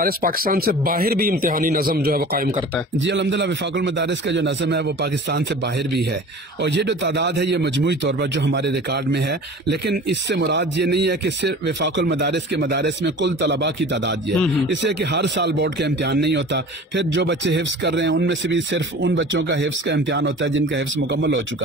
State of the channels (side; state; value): both; normal; correlation 0.40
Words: پاکستان سے باہر بھی امتحانی نظم جو ہے وہ قائم کرتا ہے؟ جی الحمدللہ، وفاق المدارس کا جو نظم ہے وہ پاکستان سے باہر بھی ہے، اور یہ جو تعداد ہے یہ مجموعی طور پر جو ہمارے ریکارڈ میں ہے، لیکن اس سے مراد یہ نہیں ہے کہ صرف وفاق المدارس کے مدارس میں کل طلباء کی تعداد یہ ہے، اس لیے کہ ہر سال بورڈ کا امتحان نہیں ہوتا، پھر جو بچے حفظ کر رہے ہیں ان میں سے بھی صرف ان بچوں کا حفظ کا امتحان ہوتا ہے جن کا حفظ مکمل ہو